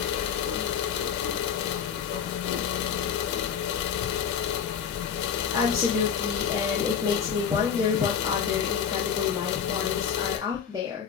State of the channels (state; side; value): quieter; right; 7.6 dB